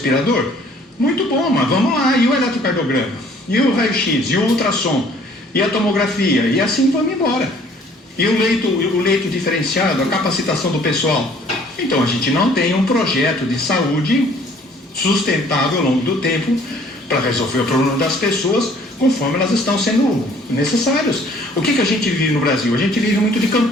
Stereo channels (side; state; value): both; normal; correlation 0.57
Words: Muito bom, mas vamos lá. E o eletrocardiograma? E o raio-x? E o ultrassom? E a tomografia? E assim vamos embora. E o leito diferenciado, a capacitação do pessoal? Então, a gente não tem um projeto de saúde sustentável ao longo do tempo para resolver o problema das pessoas conforme elas estão sendo necessárias. O que a gente vive no Brasil? A gente vive muito de